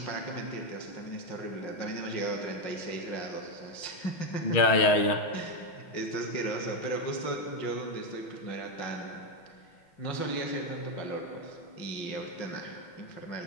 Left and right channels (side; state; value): right; late; 6.4 ms